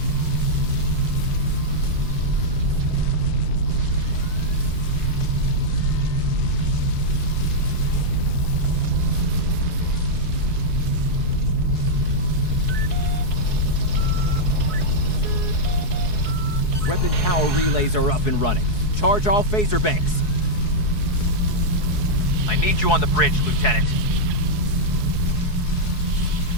Weapon power relays are up and running. Charge all phaser banks. I need you on the bridge, Lieutenant.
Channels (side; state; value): right; late; 4.7 ms